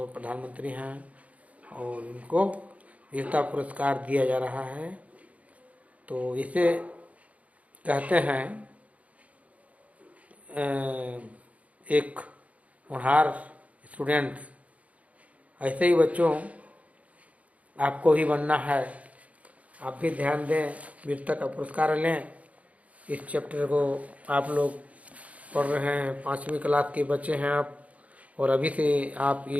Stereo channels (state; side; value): late; left; 0.067 ms